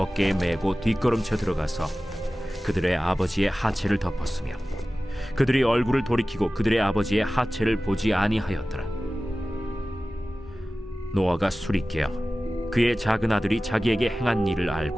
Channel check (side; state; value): both; normal; correlation 0.96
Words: 메고 뒷걸음쳐 들어가서 그들의 아버지의 하체를 덮었으며 그들이 얼굴을 돌이키고 그들의 아버지의 하체를 보지 아니하였더라. 노아가 술이 깨어 그의 작은 아들이 자기에게 행한 일을